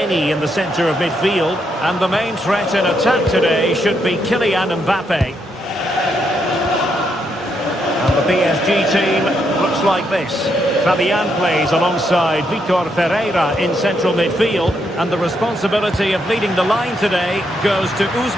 in the centre of midfield. And the main threat in attack today should be Kylian Mbappe. And the PSG team looks like this. Fabian plays alongside Vitor Ferreira in central midfield. And the responsibility of leading the line today goes to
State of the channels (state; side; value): normal; both; correlation 0.78